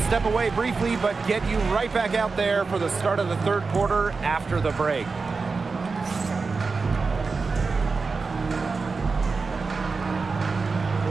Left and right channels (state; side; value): quieter; left; 4.4 dB